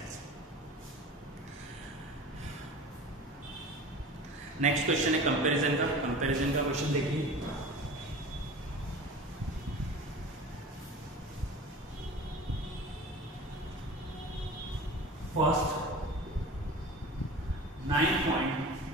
नेक्स्ट क्वेश्चन है कंपैरिजन का। कंपैरिजन का क्वेश्चन देखिए, फर्स्ट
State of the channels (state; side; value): normal; both; correlation 0.37